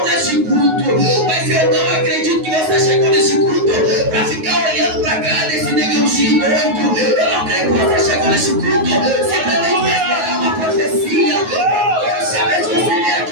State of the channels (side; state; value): left; late; 9.4 ms